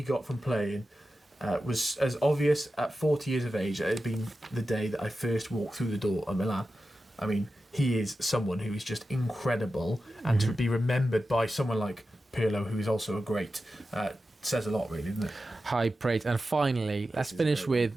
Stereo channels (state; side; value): normal; both; correlation 0.92